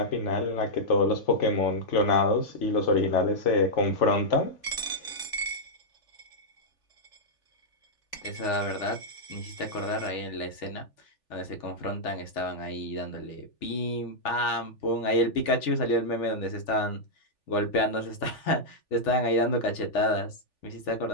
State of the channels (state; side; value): late; right; 3.4 ms